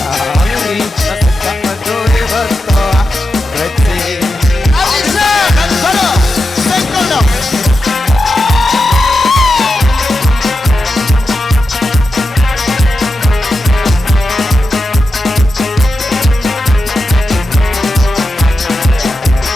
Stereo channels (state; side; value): normal; both; correlation 0.89